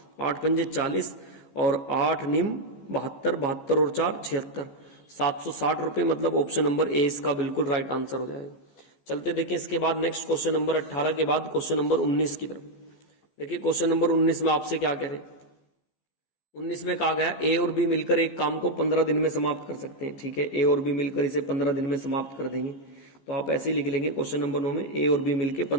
8 पंजे 40 और 8 निम 72, 72 और 4 76, 760 रुपए, मतलब ऑप्शन नंबर ए इसका बिल्कुल राइट आंसर हो जाएगा। चलते देखें इसके बाद नेक्स्ट क्वेश्चन नंबर 18 के बाद क्वेश्चन नंबर 19 की तरफ। देखिए क्वेश्चन नंबर 19 में आपसे क्या कह रहे हैं, 19 में कहा गया ए और बी मिलकर एक काम को 15 दिन में समाप्त कर सकते हैं। ठीक है, ए और बी मिलकर इसे 15 दिन में समाप्त कर देंगे, तो आप ऐसे ही लिख लेंगे क्वेश्चन नंबर 9 में ए और बी मिलकर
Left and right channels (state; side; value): late; right; 15 ms